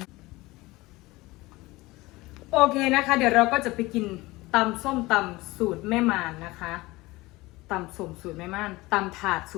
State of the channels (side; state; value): right; quieter; 20.7 dB